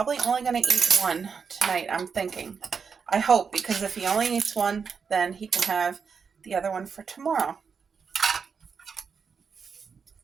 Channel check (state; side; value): quieter; left; 5.9 dB